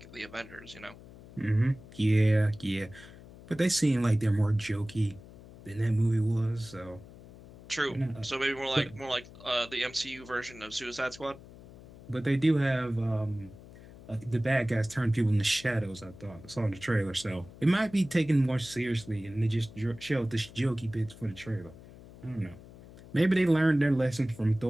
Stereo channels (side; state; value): left; noise; hum, 19 dB below the sound